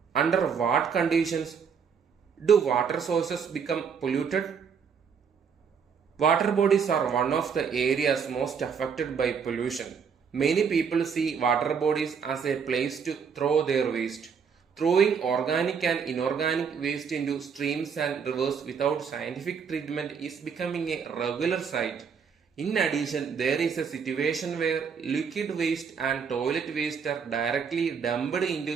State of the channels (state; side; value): quieter; left; 6.5 dB